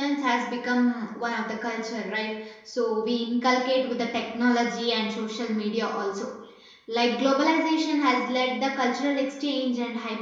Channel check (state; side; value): identical; both; correlation 1.00